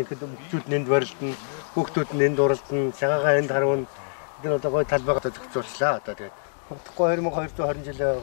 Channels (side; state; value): right; silent; digital silence